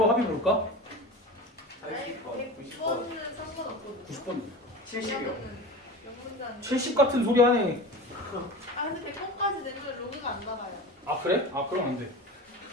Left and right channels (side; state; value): both; normal; correlation 0.32